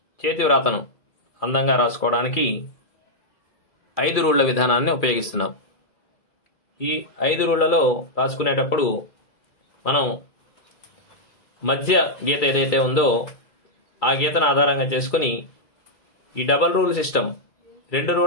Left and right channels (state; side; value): late; right; 2.3 ms